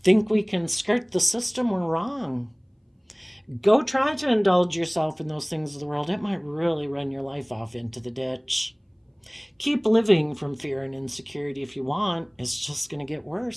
think we can skirt the system, we're wrong. Go try to indulge yourself in those things of the world. It might really run your life off into the ditch. Keep living from fear and insecurity if you want. It's just going to get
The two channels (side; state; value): both; identical; correlation 1.00